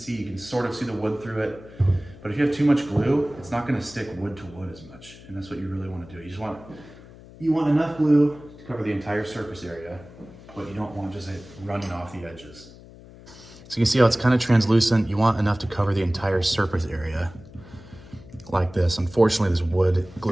you can sort of see the wood through it, but if you have too much glue, it's not going to stick wood to wood as much, and that's what you really want to do. You want enough glue to cover the entire surface area, but you don't want just it running off the edges. So you can see how it's kind of translucent. You want enough to cover the entire surface area. Like this. Unfortunately, this wood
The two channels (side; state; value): left; noise; hum, 20 dB below the sound